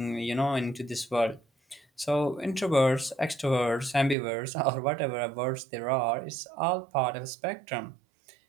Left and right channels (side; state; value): left; drops out; at 4.2 s